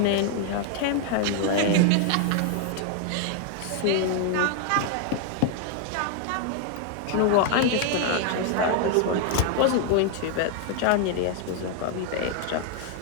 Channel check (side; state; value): both; different; correlation 0.00